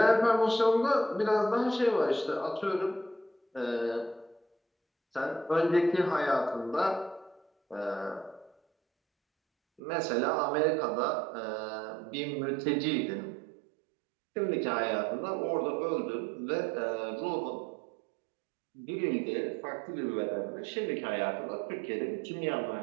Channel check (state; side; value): drops out; left; at 9.8 s